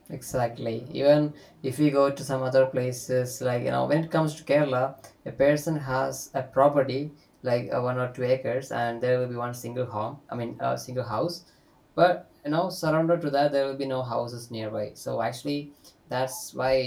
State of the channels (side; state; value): both; identical; correlation 1.00